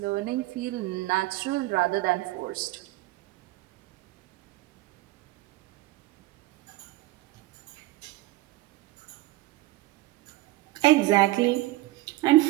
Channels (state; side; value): quieter; left; 18.9 dB